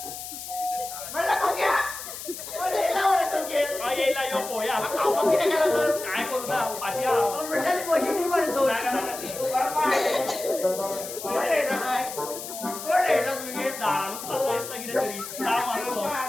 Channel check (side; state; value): left; noise; hiss, 9 dB below the sound